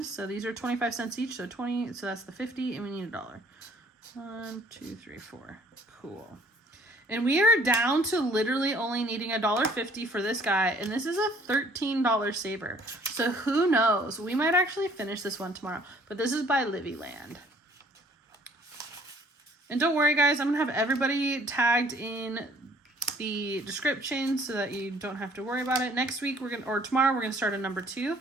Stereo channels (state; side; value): normal; both; correlation 0.58